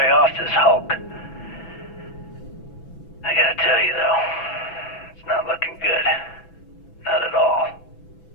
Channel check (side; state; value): right; late; 6.0 ms